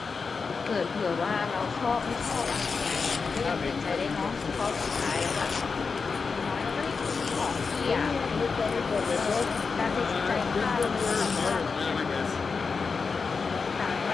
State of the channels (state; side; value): quieter; right; 4.9 dB